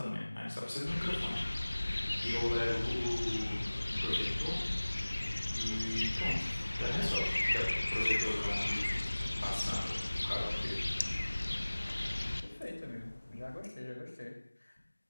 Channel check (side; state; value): both; inverted; correlation -1.00